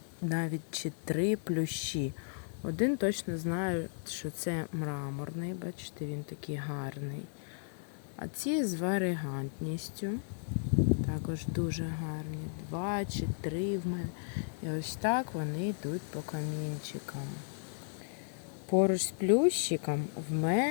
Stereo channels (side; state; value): right; silent; digital silence